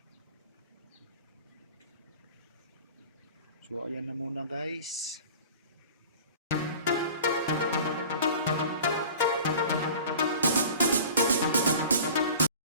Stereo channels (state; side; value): inverted; both; correlation -0.42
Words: So ayan na muna guys.